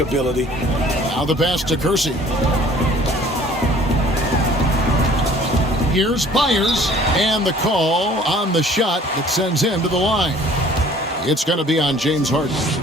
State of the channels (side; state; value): both; normal; correlation 0.53